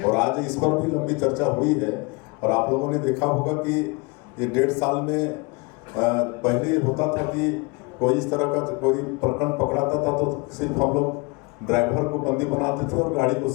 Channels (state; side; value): quieter; right; 29.1 dB